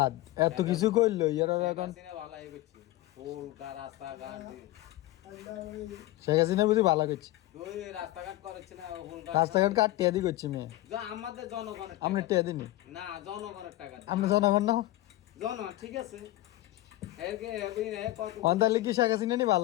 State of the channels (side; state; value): right; quieter; 16.8 dB